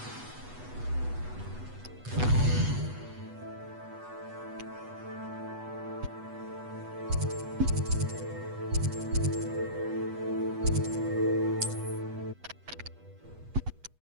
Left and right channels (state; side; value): late; left; 8.2 ms